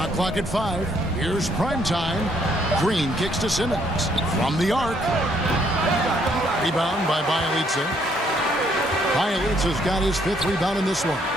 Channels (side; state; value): both; normal; correlation 0.69